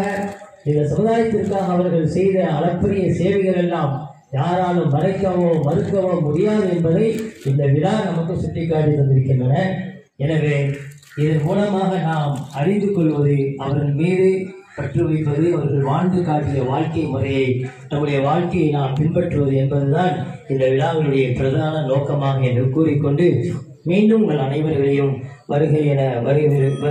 இந்த சமுதாயத்திற்காக அவர்கள் செய்த அளப்பரிய சேவைகள் எல்லாம் யாராலும் மறைக்கவோ மறுக்கவோ முடியாது என்பதை இந்த விழா நமக்கு சுட்டிக்காட்டி தந்திருக்கின்றன. எனவே இதன் மூலமாக நாம் அறிந்து கொள்வது, அவர்கள் மீது பற்று வைப்பது, அவர்கள் வாழ்ந்து காட்டிய வாழ்க்கை முறையை, நம்முடைய வாழ்க்கையை நாம் பின்பற்றுவது என்பதுதான் இந்த விழாவினுடைய பிரதான நோக்கமாக என்று கூறிக்கொண்டு, மீண்டும் உங்கள் அனைவர்களையும் வருகை என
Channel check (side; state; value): both; identical; correlation 1.00